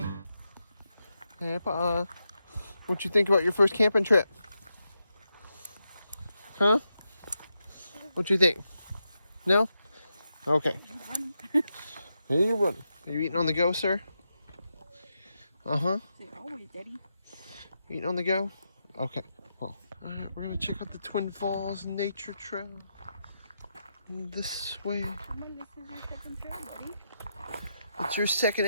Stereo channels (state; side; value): inverted; both; correlation -0.86